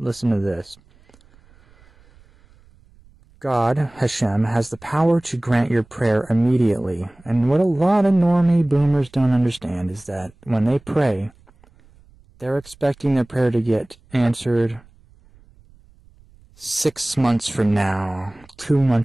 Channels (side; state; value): right; noise; rumble, 28 dB below the sound